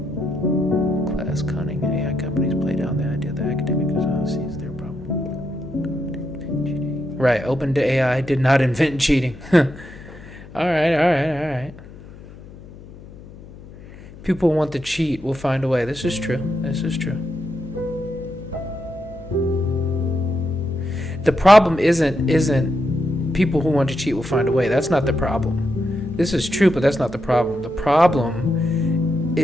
Class cunning, AI companies play down the idea that academic sees their problem. Right, OpenAI did not invent cheating. All right. People want to cheat, will find a way. This is true. The problem isn't people who want to cheat will find a way. That's not the problem. This is true, but that's not the problem. The problem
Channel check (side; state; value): left; noise; hum, 18 dB below the sound